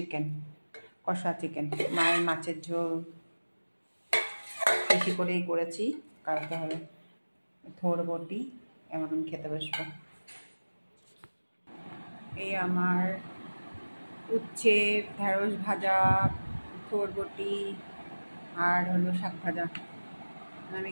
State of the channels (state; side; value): inverted; both; correlation -1.00